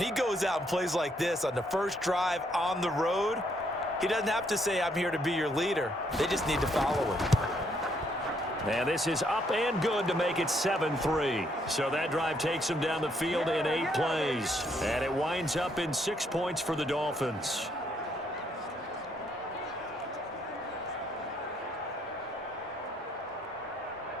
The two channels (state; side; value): normal; both; correlation 0.71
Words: he goes out and plays like this on the first drive on the road, he doesn't have to say, I'm here to be your leader. They just need to follow him. And this is up and good to make it 7-3. So that drive takes him down the field in 8 plays. And it winds up in 6 points for the Dolphins.